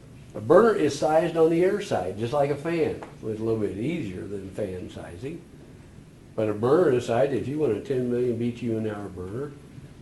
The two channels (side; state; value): both; identical; correlation 1.00